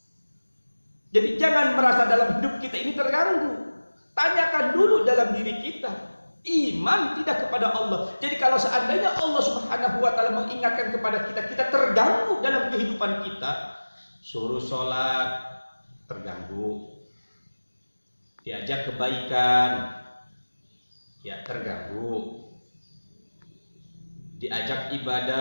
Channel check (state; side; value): inverted; both; correlation -1.00